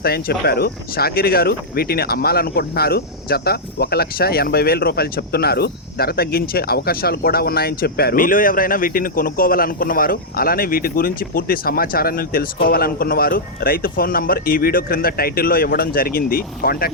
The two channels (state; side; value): normal; both; correlation -0.07